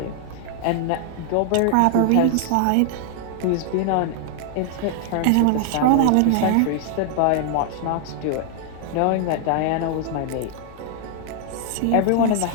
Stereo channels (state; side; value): different; both; correlation 0.00